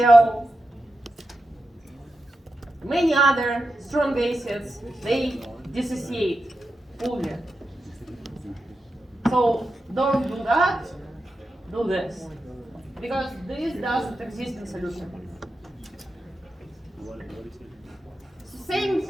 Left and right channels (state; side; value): normal; both; correlation 0.90